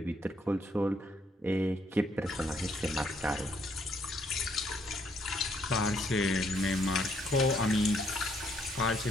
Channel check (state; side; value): normal; both; correlation 0.71